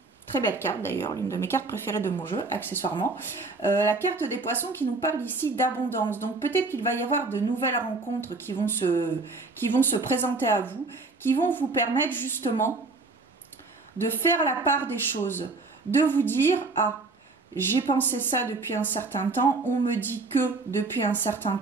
Très belle carte d'ailleurs, l'une de mes cartes préférées de mon jeu, accessoirement. La carte des poissons qui nous parle ici d'abondance. Donc peut-être qu'il va y avoir de nouvelles rencontres qui vont se présenter à vous, qui vont vous permettre justement de faire la part des choses, de vous dire « Ah, j'ai pensé ça depuis un certain temps, on me dit que depuis un certain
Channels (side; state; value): left; quieter; 3.6 dB